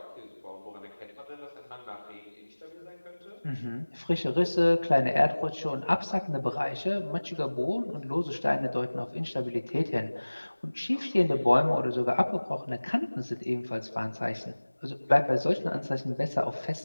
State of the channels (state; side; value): inverted; both; correlation -1.00